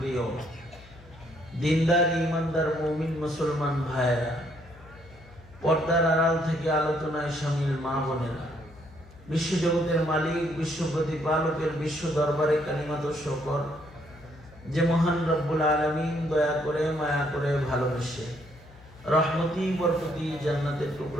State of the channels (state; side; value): noise; left; hum, 22 dB below the sound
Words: দিনদার ইমানদার মুমিন মুসলমান ভাইয়েরা, পর্দার আড়াল থেকে আলোচনায় শামিল মা বোনেরা, বিশ্বজগতের মালিক, বিশ্ব প্রতিপালকের বিশ্ব দরবারে কালিমাত শকর যে মহান রব্বুল আলামিন দয়া করে, মায়া করে, ভালোবেসে রহমতি বরকতি জান্নাতের